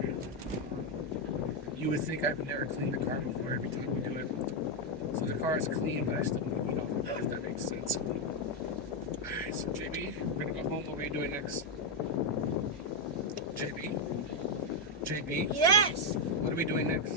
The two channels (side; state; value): both; normal; correlation 0.02